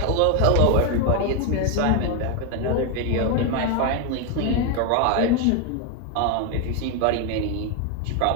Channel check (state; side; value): different; both; correlation 0.01